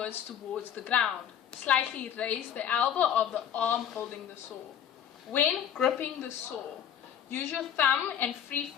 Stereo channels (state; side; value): quieter; right; 9.2 dB